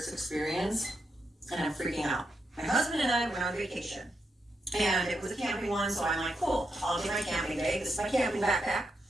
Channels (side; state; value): both; normal; correlation 0.83